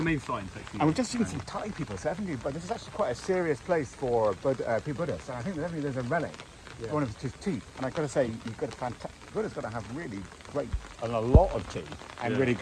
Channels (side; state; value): both; identical; correlation 1.00